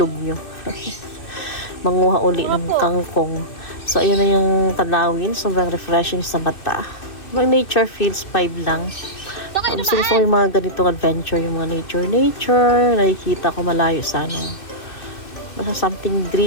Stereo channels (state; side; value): late; right; 2.6 ms